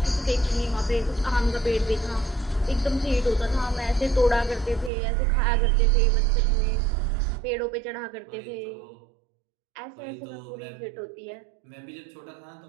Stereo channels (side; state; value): left; drops out; at 4.9 s